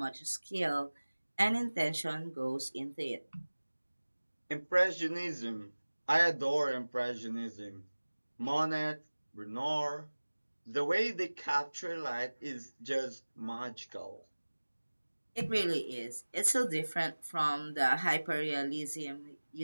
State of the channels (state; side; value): inverted; both; correlation -1.00